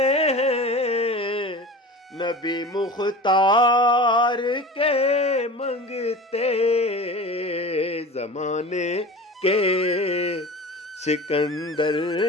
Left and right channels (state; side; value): normal; both; correlation 0.34